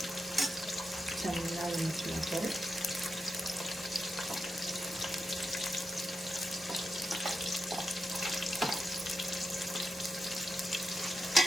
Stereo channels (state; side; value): normal; both; correlation 0.87